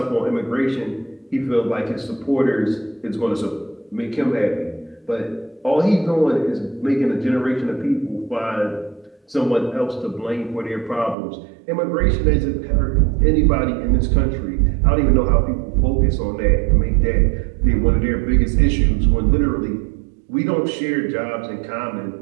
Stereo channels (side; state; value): left; drops out; at 11.2 s